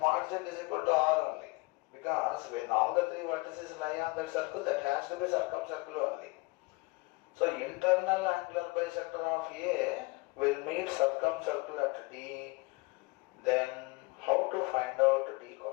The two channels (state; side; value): quieter; right; 25.2 dB